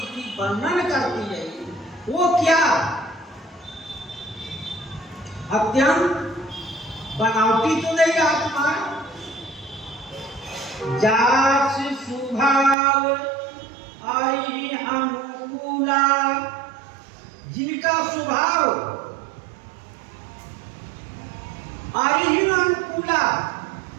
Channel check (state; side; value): drops out; left; at 12.8 s